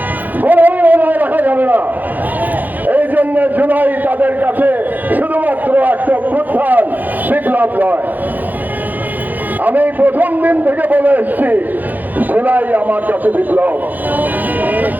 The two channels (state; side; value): late; left; 0.084 ms